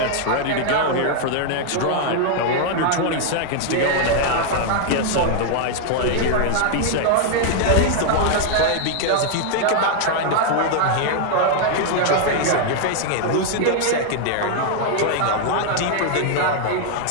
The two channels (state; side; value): different; both; correlation 0.00